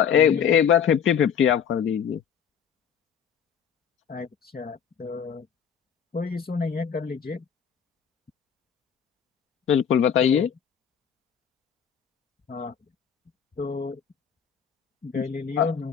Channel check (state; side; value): quieter; right; 7.9 dB